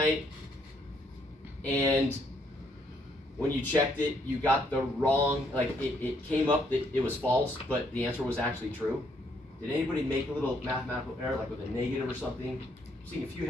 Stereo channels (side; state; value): both; normal; correlation 0.70